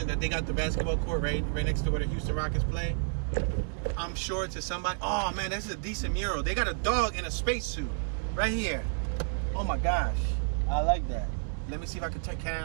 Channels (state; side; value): silent; left; digital silence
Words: that they got the basketball court right next to where the Houston Rockets play. I'm sure to somebody, oh man, this is a decent mural. They got a dog in a spacesuit right here. Oh my gosh, I like that. Let me see if I can turn. Can